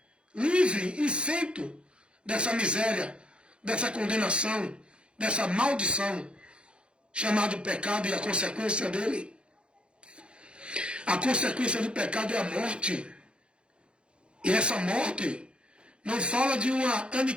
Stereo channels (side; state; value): left; late; 0.056 ms